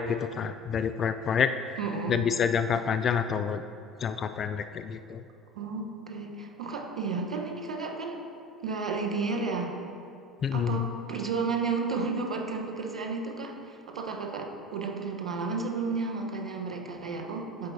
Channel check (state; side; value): normal; both; correlation 0.37